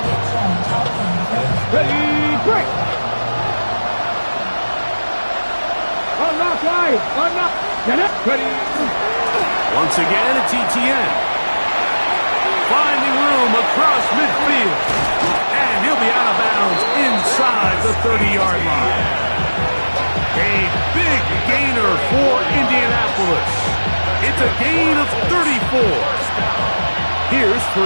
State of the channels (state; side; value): inverted; both; correlation -1.00